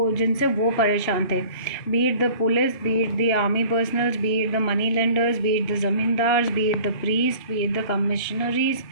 जिनसे वो परेशान थे. Beat the police, beat the army personnels, beat the money lenders, beat the zamindars, beat the priest, beat the commissionaries,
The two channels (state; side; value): late; right; 2.7 ms